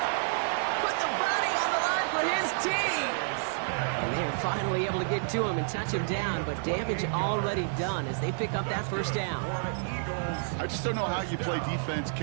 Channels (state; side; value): silent; left; digital silence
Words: Put the body on the line for his team. And they're finally able to get to him and touch him down, but damage already done as they pick up that 1st down. I just don't know how you play defense,